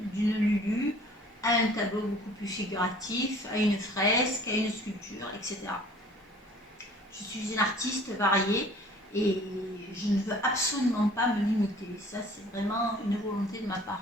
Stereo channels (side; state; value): both; normal; correlation 0.51